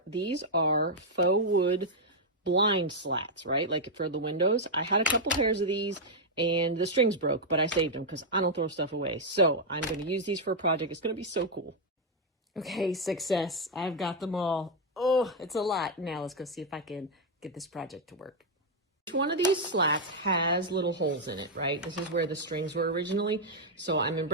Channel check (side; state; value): both; normal; correlation -0.02